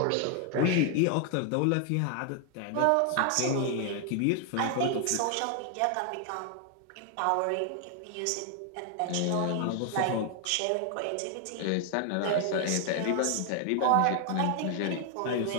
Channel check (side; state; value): both; different; correlation 0.00